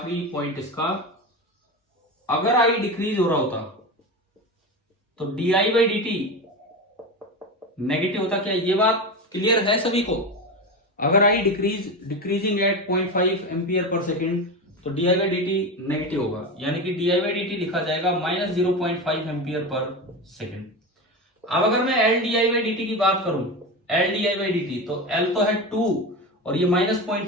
पॉइंट इसका, अगर आई डिक्रीज हो रहा होता तो DI by D T negative होता। क्या ये बात क्लियर है सभी को? अगर आई decreasing eight 0.5 ampere per second तो D I by D T negative होगा, यानी कि D I by D T लिखा जाएगा माइनस 0.5 एम्पियर पर सेकेंड। अब अगर मैं L D I by D T की बात करूं, L D I by D T, तो एल तो है 2 और ये माइनस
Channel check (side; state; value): both; normal; correlation 0.22